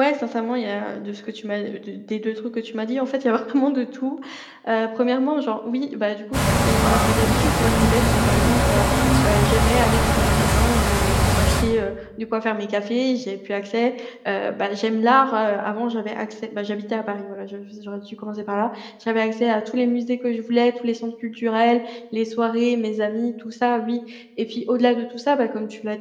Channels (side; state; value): both; identical; correlation 1.00